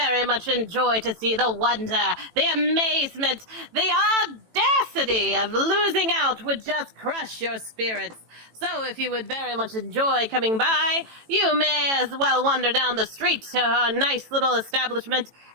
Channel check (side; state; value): left; late; 18 ms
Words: much enjoy to see the wonder, the amazement, the audacity of losing out would just crush your spirits. So if you would very much enjoy coming by, you may as well wander down the street to her nice little establishment